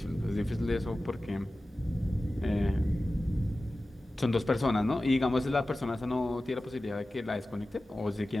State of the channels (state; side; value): normal; both; correlation 0.95